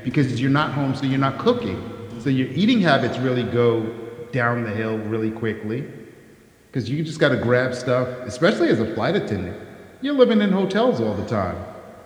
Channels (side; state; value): both; identical; correlation 1.00